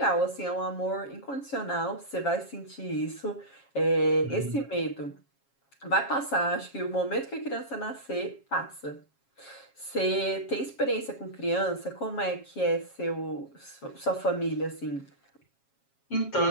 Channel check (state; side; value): late; right; 7.3 ms